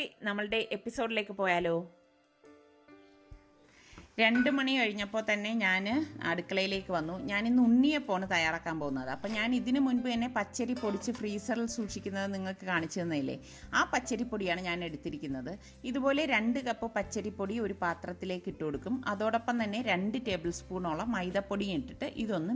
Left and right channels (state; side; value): identical; both; correlation 1.00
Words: നമ്മളുടെ എപ്പിസോഡിലേക്ക് പോയാലോ. 2 മണി കഴിഞ്ഞപ്പോൾ തന്നെ ഞാൻ അടുക്കളയിലേക്ക് വന്നു. ഞാനിന്ന് ഉണ്ണിയപ്പമാണ് തയ്യാറാക്കാൻ പോകുന്നത്. അപ്പം ഞാൻ ഇതിനു മുൻപ് തന്നെ പച്ചരി പൊടിച്ച് ഫ്രീസറിൽ സൂക്ഷിക്കുന്നത് നിങ്ങൾക്ക് കാണിച്ചു തന്നില്ലേ, ആ പച്ചരിപ്പൊടിയാണ് ഞാൻ എടുത്തിരിക്കുന്നത്. ഇതുപോലെ 2 കപ്പ് പച്ചരിപ്പൊടി ഒരു പാത്രത്തിലേക്ക് ഇട്ട് കൊടുക്കും. അതോടൊപ്പം തന്നെ 2 ടേബിൾ സ്പൂണോളം മൈദപ്പൊടിയും ഇട്ടിട്ട് ഇതൊന്ന്